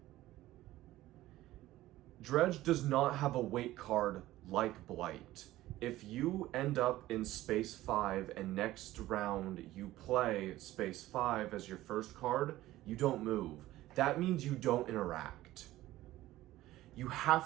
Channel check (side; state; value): left; quieter; 15.9 dB